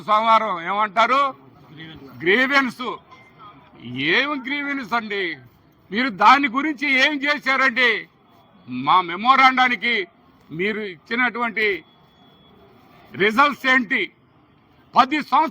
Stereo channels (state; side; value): identical; both; correlation 1.00